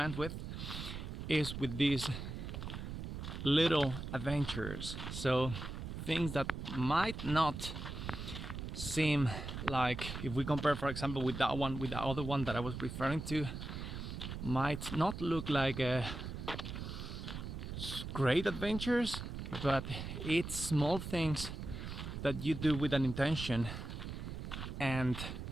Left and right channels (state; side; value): noise; right; rumble, 7 dB below the sound